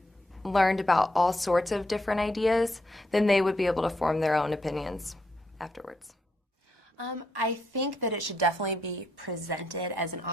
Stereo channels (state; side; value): normal; both; correlation 0.78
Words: learned about all sorts of different ideas, then they would be able to form their own opinions afterwards. I think that it should definitely be presented as an